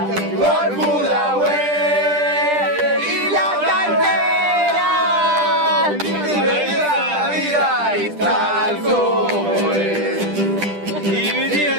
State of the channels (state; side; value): late; left; 10 ms